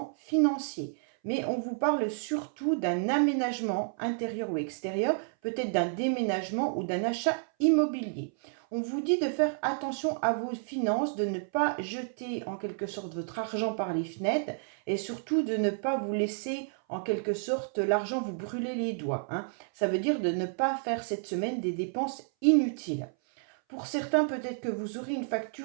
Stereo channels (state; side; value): silent; left; 58 dB below the other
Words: financier. Mais on vous parle surtout d'un aménagement intérieur ou extérieur, peut-être d'un déménagement ou d'un achat immobilier. On vous dit de faire attention à vos finances, de ne pas jeter en quelque sorte votre argent par les fenêtres et surtout de ne pas vous laisser en quelque sorte l'argent vous brûler les doigts. Ça veut dire de ne pas faire cette semaine des dépenses inutiles. Pour certains, peut-être que vous aurez une